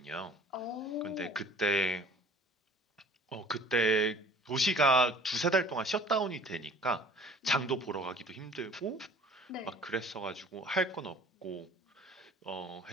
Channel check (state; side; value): normal; both; correlation 0.49